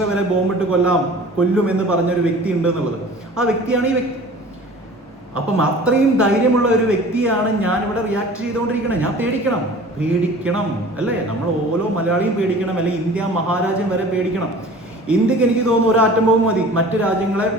വരെ ബോംബിട്ട് കൊല്ലും എന്ന് പറഞ്ഞൊരു വ്യക്തി ഉണ്ട് എന്നുള്ളത്. ആ വ്യക്തിയാണ് ഈ വ്യക്തി. അപ്പം അത്രയും ധൈര്യമുള്ള ഒരു വ്യക്തിയാണ് ഞാൻ ഇവിടെ റിയാക്ട് ചെയ്തുകൊണ്ടിരിക്കുന്നത്. ഞാൻ പേടിക്കണം അല്ലേ? നമ്മൾ ഓരോ മലയാളിയും പേടിക്കണം, അല്ലെങ്കിൽ ഇന്ത്യ മഹാരാജ്യം വരെ പേടിക്കണം. ഇന്ത്യക്ക് എനിക്ക് തോന്നുന്നു ഒരു ആറ്റം ബോംബ് മതി മറ്റു രാജ്യങ്ങളെ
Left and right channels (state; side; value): normal; both; correlation 0.43